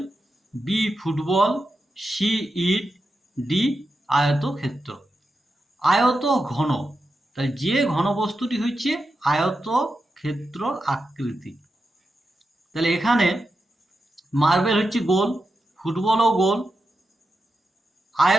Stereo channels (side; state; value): both; normal; correlation 0.89